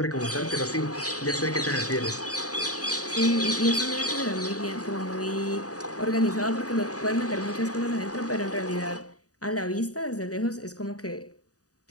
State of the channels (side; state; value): right; late; 0.67 ms